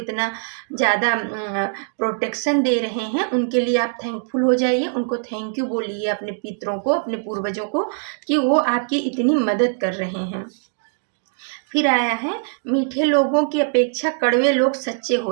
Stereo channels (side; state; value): left; silent; digital silence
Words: ज़्यादा प्रोटेक्शन दे रहे हैं, उनके लिए आप थैंकफुल हो जाइए, उनको थैंक यू बोलिए, अपने पितरों को, अपने पूर्वजों को, कि वो आपकी इतनी मदद कर रहे हैं। फिर आया है, मीठे लोगों की अपेक्षा कड़वे लोग सच्चे